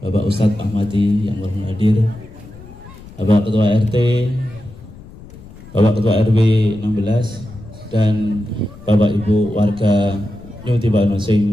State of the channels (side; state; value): left; noise; rumble, 19 dB below the sound